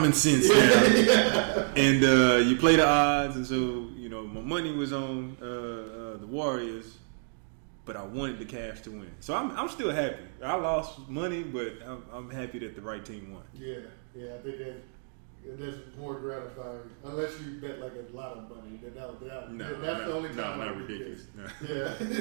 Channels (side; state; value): left; silent; digital silence